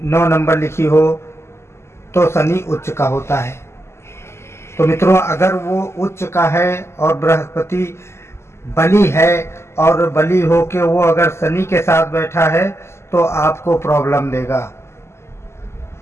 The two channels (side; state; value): right; late; 0.13 ms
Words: नंबर लिखी हो, तो शनि उच्च का होता है। तो मित्रों, अगर वो उच्च का है और बृहस्पति बली है और बली हो के वो अगर शनि के साथ बैठा है तो आपको प्रॉब्लम देगा।